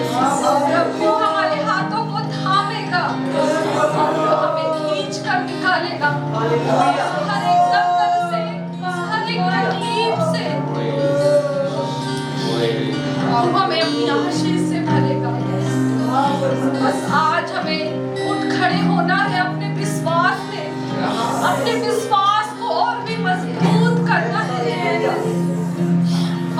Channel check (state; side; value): identical; both; correlation 1.00